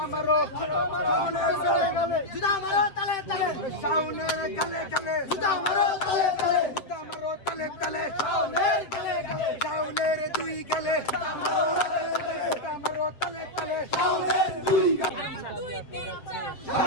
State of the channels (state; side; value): late; right; 7.6 ms